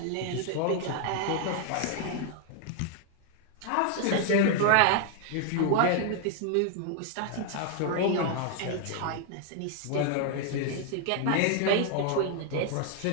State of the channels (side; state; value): both; different; correlation 0.00